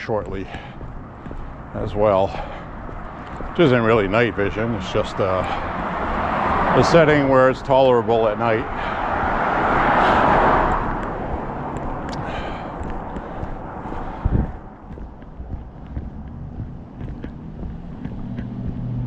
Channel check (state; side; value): identical; both; correlation 1.00